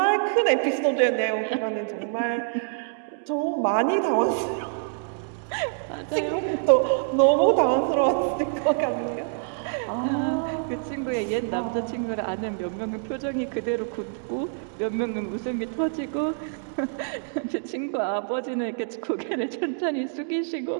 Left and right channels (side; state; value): left; silent; digital silence